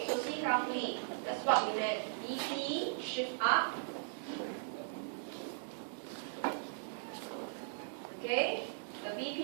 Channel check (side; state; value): left; silent; digital silence